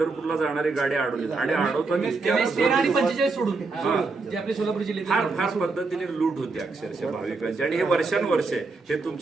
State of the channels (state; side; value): quieter; left; 3.9 dB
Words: जाणारी गाडी अडवलीच आणि फार फार पद्धतीने लूट होते अक्षरशः भाविकांची आणि हे वर्षानुवर्षे हे